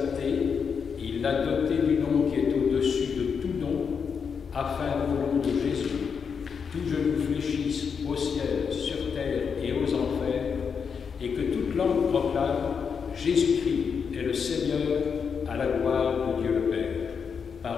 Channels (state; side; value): quieter; right; 6.3 dB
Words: il l'a doté du nom qui est au-dessus de tout nom, afin qu'au nom de Jésus, tout genou fléchisse au ciel, sur terre et aux enfers, et que toute langue proclame Jésus-Christ est le Seigneur à la gloire de Dieu le Père.